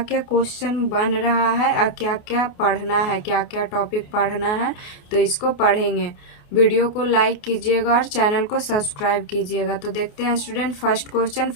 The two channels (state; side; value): late; right; 28 ms